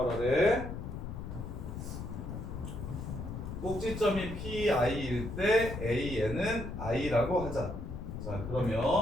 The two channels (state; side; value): noise; left; rumble, 7 dB below the sound